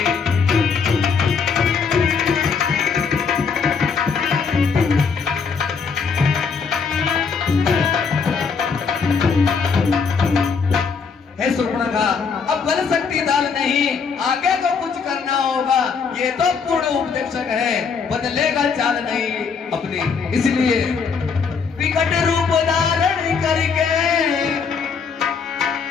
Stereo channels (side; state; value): right; quieter; 5.7 dB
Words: हे सुर्पणखा, अब गल सकती दाल नहीं, आगे को कुछ करना होगा। ये तो पूर्ण उपदेशक है, बदलेगा चाल नहीं अपनी, इसलिए विकट रूप धारण करके,